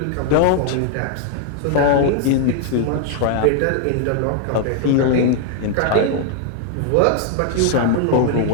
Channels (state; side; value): different; both; correlation 0.00